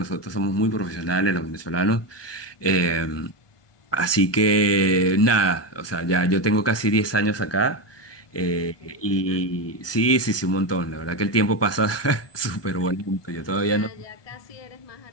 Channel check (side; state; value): right; late; 1.2 ms